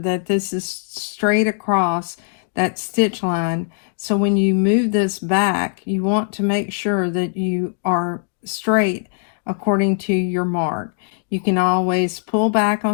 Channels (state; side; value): silent; right; digital silence